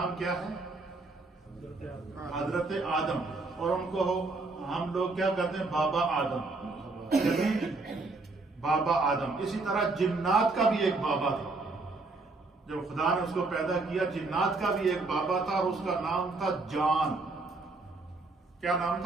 کیا ہے؟ حضرت آدم، اور ان کو ہم لوگ کیا کہتے ہیں؟ بابا آدم، بابا آدم. اسی طرح جنات کا بھی ایک بابا تھا. جب خدا نے اس کو پیدا کیا جنات کا بھی ایک بابا تھا اور اس کا نام تھا جان. کیا نام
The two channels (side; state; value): left; quieter; 3.5 dB